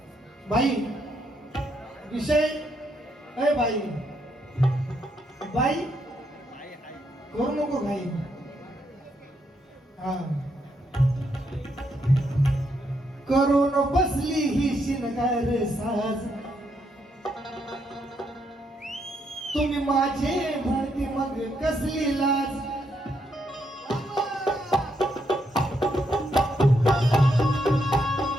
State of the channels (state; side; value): normal; both; correlation 0.77